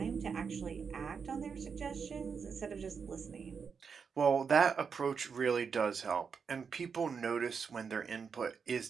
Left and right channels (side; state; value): left; quieter; 6.0 dB